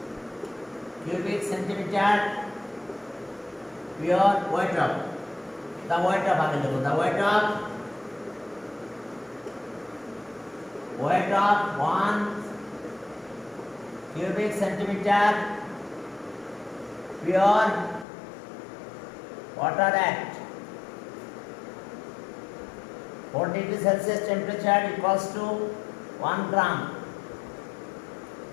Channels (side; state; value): right; drops out; at 18.1 s